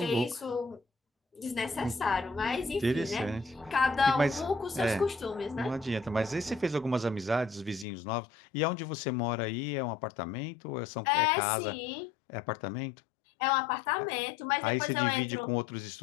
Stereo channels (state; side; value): drops out; right; at 7.9 s